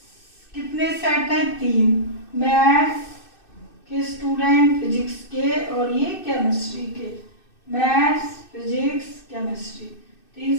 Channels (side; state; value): right; late; 2.6 ms